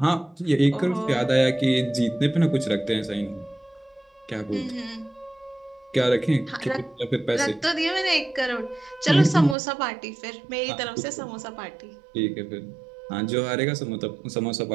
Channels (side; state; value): left; drops out; at 9.6 s